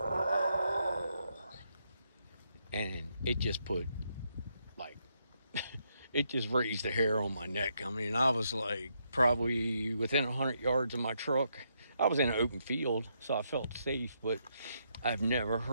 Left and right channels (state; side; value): inverted; both; correlation -0.78